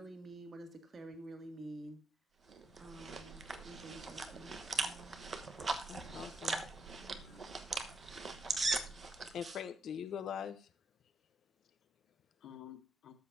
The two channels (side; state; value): both; normal; correlation 0.76